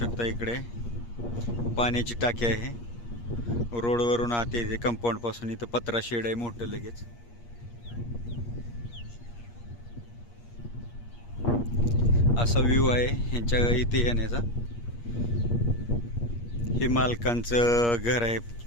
इकडे पाण्याची टाकी आहे. रोडवरून आत येते कंपाऊंडपासून. इथं पत्रा शेड आहे मोठं लगेच. असा व्ह्यू आहे ह्यांच्या इथे येण्याचा. हे मालकांचं घर आहे.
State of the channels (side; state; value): right; late; 8.5 ms